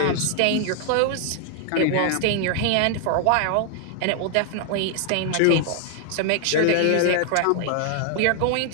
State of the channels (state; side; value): different; both; correlation 0.00